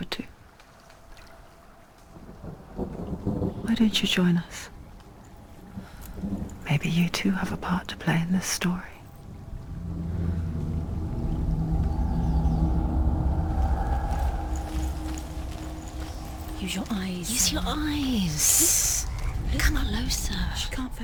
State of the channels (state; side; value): identical; both; correlation 1.00